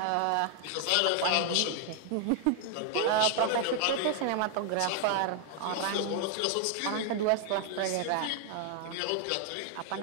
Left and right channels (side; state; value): both; different; correlation 0.00